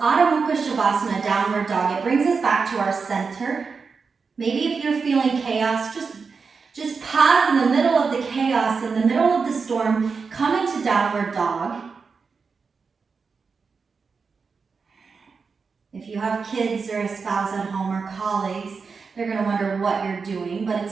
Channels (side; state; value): left; quieter; 5.1 dB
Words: Mukha Shavasana, downward dog. It brings us back to our center. Maybe if you're feeling chaos, just pause in the middle of the chaos, in the middle of the storm, come into downward dog. If you have kids or a spouse at home or colleagues, they're going to wonder what you're doing, but